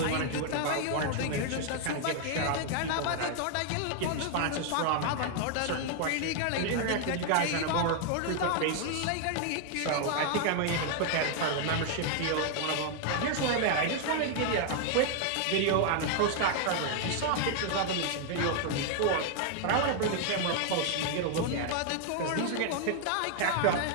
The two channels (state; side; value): different; both; correlation 0.00